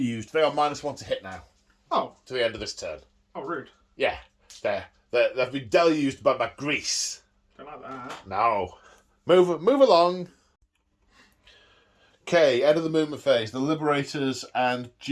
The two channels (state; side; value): identical; both; correlation 1.00